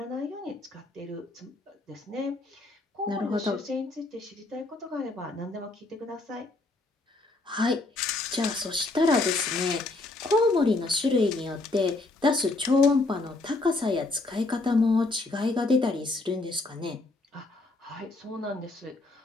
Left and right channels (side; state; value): right; quieter; 3.2 dB